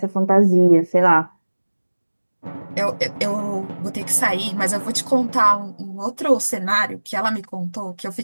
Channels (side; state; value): both; inverted; correlation -1.00